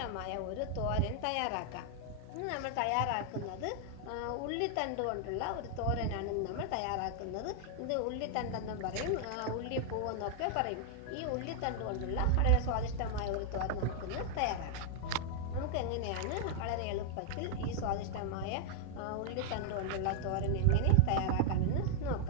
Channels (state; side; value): different; both; correlation -0.01